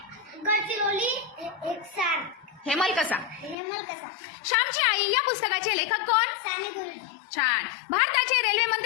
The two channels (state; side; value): drops out; right; at 3.6 s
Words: गडचिरोली. हेक्सार. हेमलकसा. हेमलकसा. श्यामची आई या पुस्तकाचे लेखक कोण? साने गुरुजी. छान. भारताचे रेल्वे